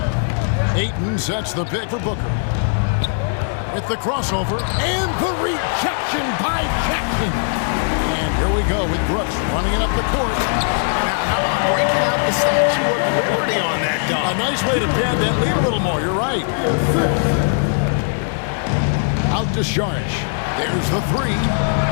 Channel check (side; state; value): right; silent; 66 dB below the other